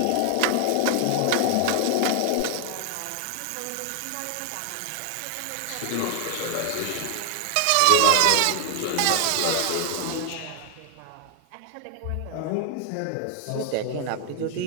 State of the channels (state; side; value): different; both; correlation 0.00